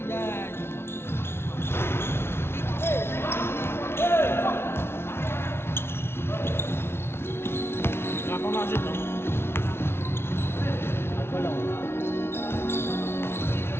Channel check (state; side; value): late; right; 0.12 ms